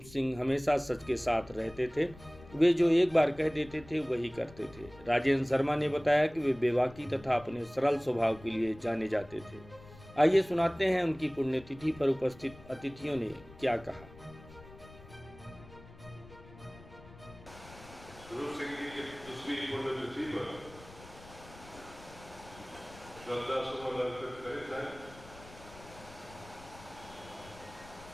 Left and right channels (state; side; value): noise; left; rumble, 20 dB below the sound